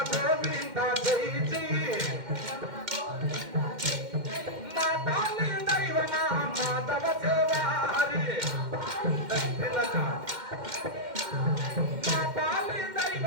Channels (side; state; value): left; late; 2.1 ms